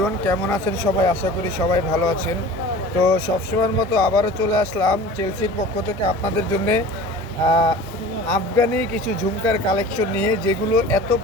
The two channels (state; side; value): normal; both; correlation 0.40